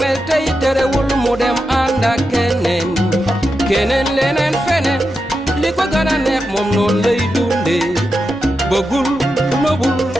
tay terewul mudem anda kenen lenen fenen liko gëna neex mom non lay dundé bëggul nobul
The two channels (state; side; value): normal; both; correlation 0.88